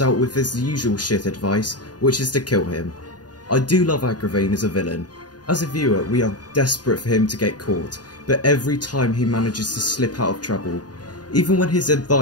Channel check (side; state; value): right; late; 0.69 ms